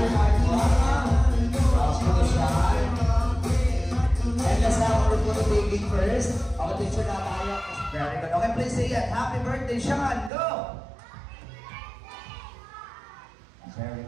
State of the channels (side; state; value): left; drops out; at 10.3 s